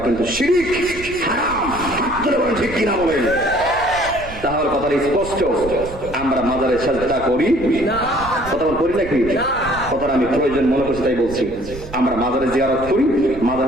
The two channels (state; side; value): noise; right; rumble, 14 dB below the sound